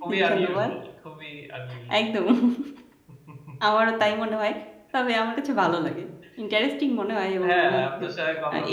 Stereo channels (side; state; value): both; identical; correlation 1.00